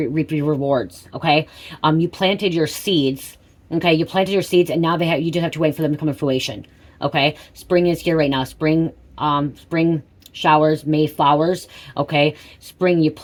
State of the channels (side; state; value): both; identical; correlation 1.00